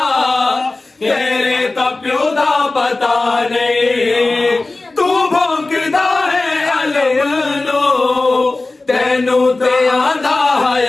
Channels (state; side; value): quieter; right; 3.2 dB